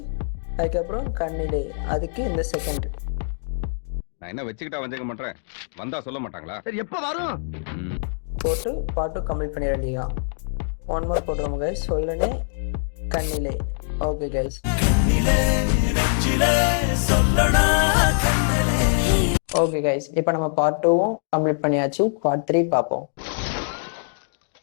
அதுக்கப்புறம் கண்ணிலே அதுக்கு இந்த செகண்ட் நான் என்ன வச்சுக்கிட்டா வஞ்சிக்க மாட்டேன், வந்தா சொல்ல மாட்டாங்களா? சரி எப்ப வரும்? போட்டு பாட்டு கம்ப்ளீட் பண்ணிட வேண்டியதான். 1 மோர் போட்டுருவோம் கைஸ். சொல்லனே கண்ணிலே. ஓகே கைஸ், ஓகே கைஸ், இப்போ நம்ம பார்ட் 2வும் கம்ப்ளீட் பண்ணியாச்சு. பார்ட் 3 பார்ப்போம்.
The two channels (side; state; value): right; silent; digital silence